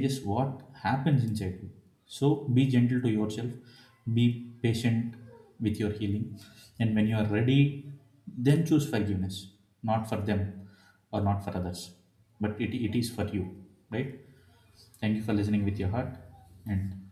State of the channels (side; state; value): both; identical; correlation 1.00